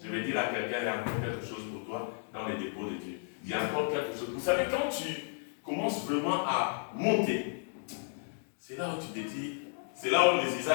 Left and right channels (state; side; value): silent; right; digital silence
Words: Je vais dire à quelqu'un, il y a encore quelque chose pour toi dans les dépôts de Dieu. Il y a encore quelque chose. Vous savez, quand tu commences vraiment à monter, c'est là où tu te dis, c'est là où les